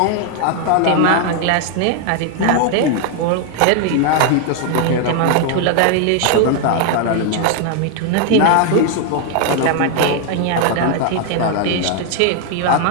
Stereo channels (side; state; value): both; different; correlation 0.00